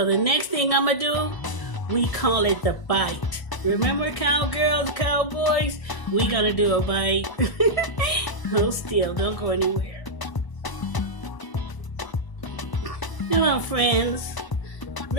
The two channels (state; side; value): late; right; 1.0 ms